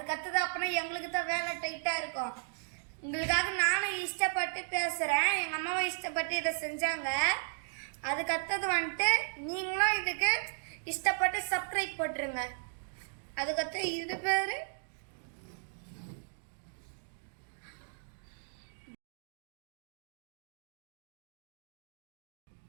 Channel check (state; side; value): silent; left; digital silence